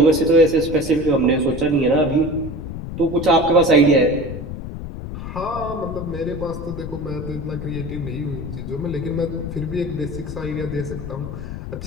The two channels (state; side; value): noise; left; rumble, 8 dB below the sound